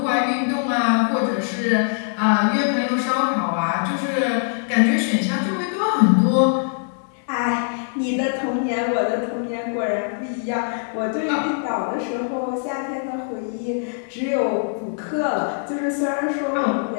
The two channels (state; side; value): silent; right; digital silence